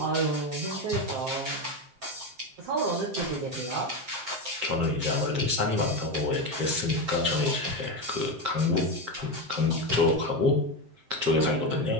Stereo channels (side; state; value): left; late; 7.6 ms